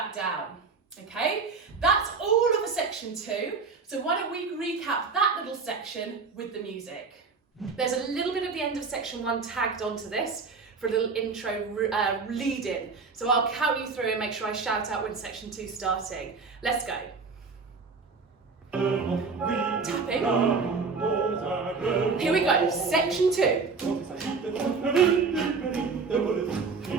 down. Okay, that's all of a section 2. So why don't we recap that little section with the music. There's a little bit of the end of section 1 tagged onto this for a little intro lead in. So I'll count you through and make sure I shout out when section 2's starting. Let's go. Tapping. Here we go, section 2.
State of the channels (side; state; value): left; quieter; 4.7 dB